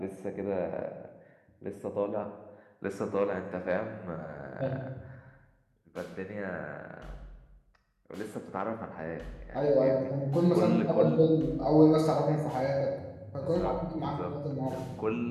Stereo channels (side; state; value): both; identical; correlation 1.00